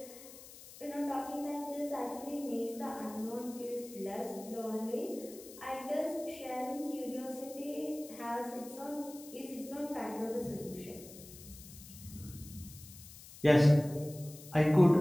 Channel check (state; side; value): noise; left; hiss, 17 dB below the sound